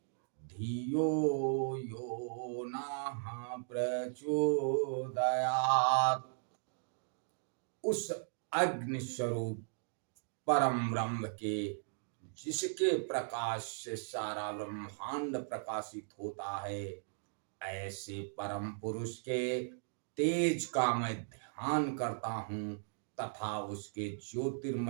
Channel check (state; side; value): silent; left; digital silence